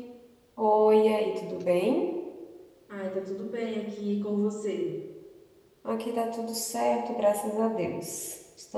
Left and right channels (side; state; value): both; identical; correlation 1.00